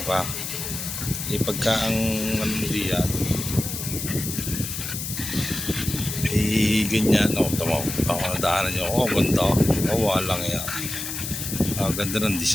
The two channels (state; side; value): noise; left; hiss, 5 dB below the sound